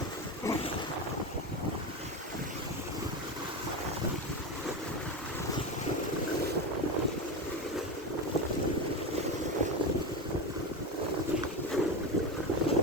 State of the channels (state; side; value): normal; both; correlation 0.19